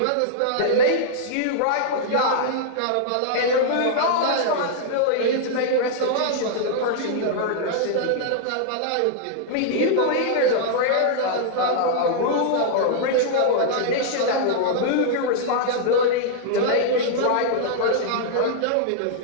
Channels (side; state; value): both; different; correlation -0.01